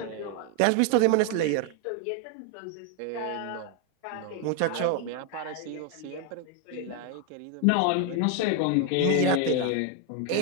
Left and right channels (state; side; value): different; both; correlation 0.01